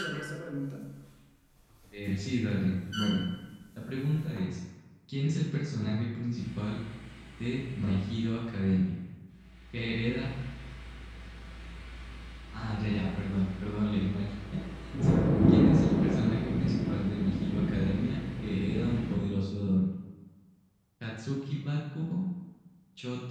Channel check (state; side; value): identical; both; correlation 1.00